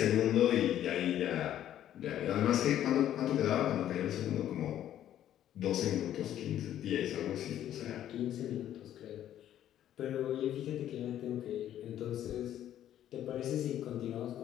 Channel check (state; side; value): quieter; right; 11.5 dB